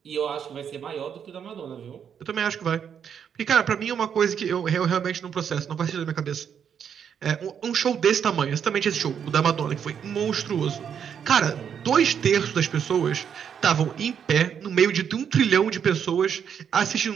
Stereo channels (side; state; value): left; quieter; 7.9 dB